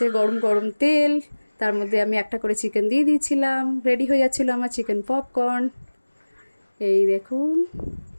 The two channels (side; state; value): both; inverted; correlation -1.00